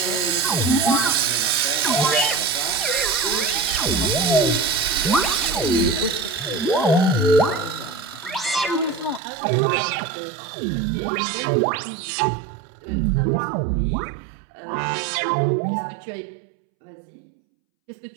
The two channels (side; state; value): left; drops out; at 9.2 s